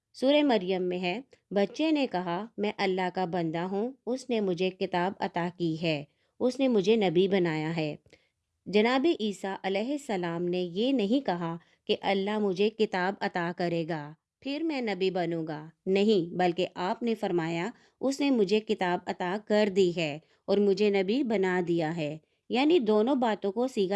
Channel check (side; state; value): both; identical; correlation 1.00